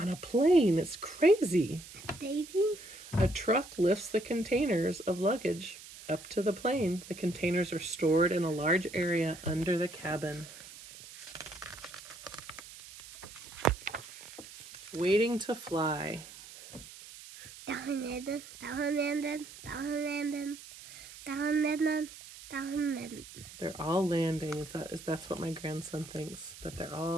a plane, it's crazy. Daisy? A truck lifts the containers of luggage up to the plane. The containers are stored in a large area under the cabin. Waiting to fly. Down landing. They're all landing. That's what my grandson thinks, that they're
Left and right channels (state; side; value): noise; right; hiss, 16 dB below the sound